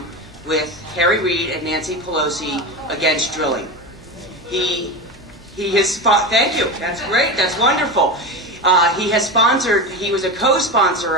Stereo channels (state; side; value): noise; left; hum, 26 dB below the sound